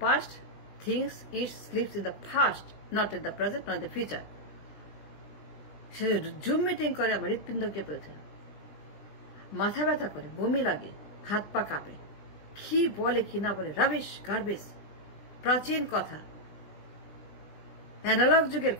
past, things it leaves in the past, not in the present, not in the future. Say zoom meeting করে আমার হৃৎপিণ্ড কেঁপে ওঠে, মাথা ব্যথা করে, বমি লাগে, হাত পা কাঁপে। কি বলে কি না বলে, রাবিশ গার্বেজ। প্রাচীন কথা, অ্যানালগ যুগের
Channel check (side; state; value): right; late; 19 ms